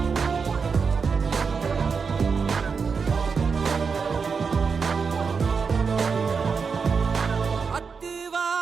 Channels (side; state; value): left; quieter; 5.5 dB